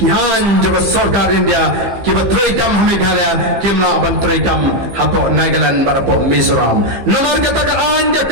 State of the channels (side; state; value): left; late; 15 ms